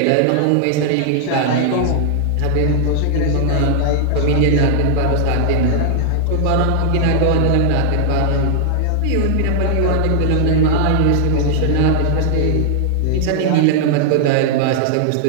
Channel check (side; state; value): both; different; correlation -0.01